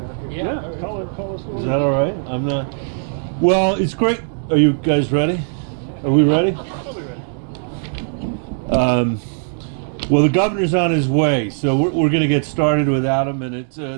Yeah. Call us. Is that all right? I'm not. Well, it's great. Are you guys ready? Are we ready? I'll be ready. Well, the governor's on his way, so we're going to get started without him. And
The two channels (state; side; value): silent; left; 66 dB below the other